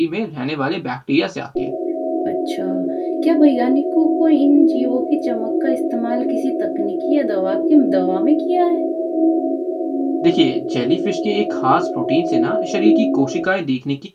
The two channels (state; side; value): identical; both; correlation 1.00